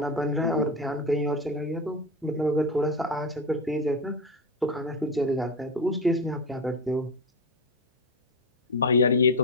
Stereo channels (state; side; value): normal; both; correlation 0.16